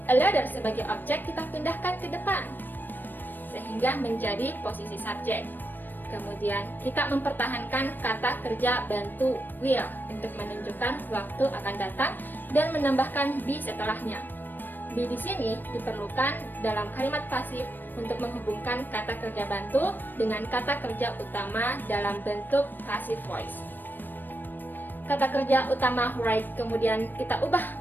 a letter sebagai objek kita pindahkan ke depan, sehingga menjadi posisi subjek. Kemudian kita mempertahankan kata kerja bantu will untuk menunjukkan waktu akan datang dan menambahkan be setelahnya. Be di sini diperlukan dalam kalimat pasif untuk menghubungkan kata kerja bantu dengan kata kerja utama dalam bentuk passive voice. Kata kerja utama write kemudian kita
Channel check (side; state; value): right; late; 0.092 ms